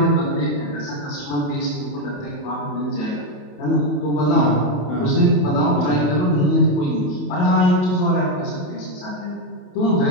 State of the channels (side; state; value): right; late; 28 ms